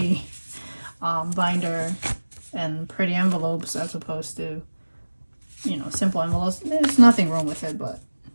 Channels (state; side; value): inverted; both; correlation -1.00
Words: binder and pretty envelopes as opposed to, you know, simple envelopes. There's nothing wrong with it, but